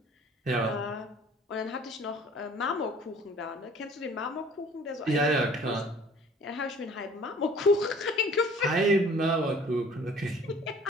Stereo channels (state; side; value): normal; both; correlation 0.51